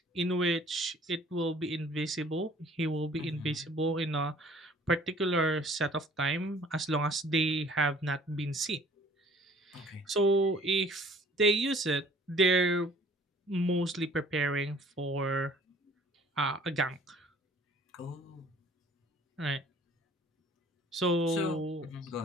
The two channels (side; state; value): both; normal; correlation 0.53